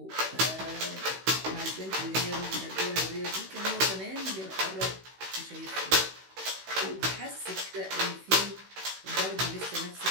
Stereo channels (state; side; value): late; left; 16 ms